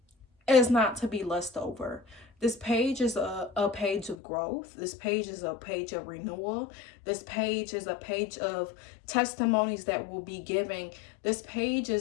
is not to be lust over. This page is a page of growth. This page is a page of renewal. This page is a page of testimonies that will be giving. This page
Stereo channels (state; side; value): drops out; right; at 4.2 s